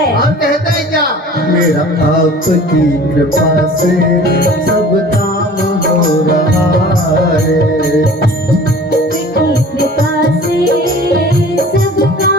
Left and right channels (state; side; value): normal; both; correlation 0.45